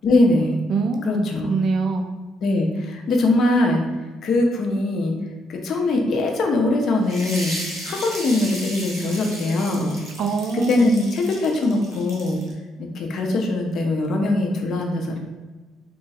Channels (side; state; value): both; normal; correlation 0.77